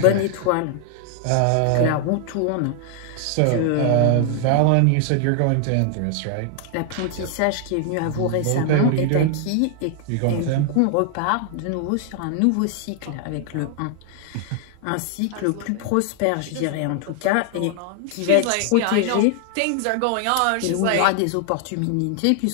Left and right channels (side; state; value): both; different; correlation 0.00